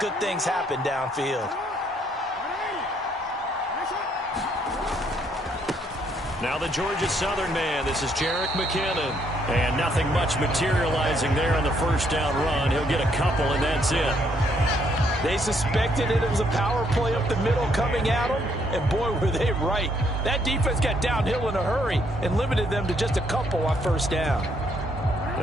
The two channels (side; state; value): both; normal; correlation 0.70